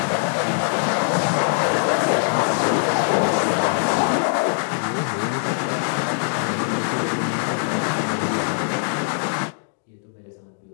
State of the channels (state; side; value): silent; right; digital silence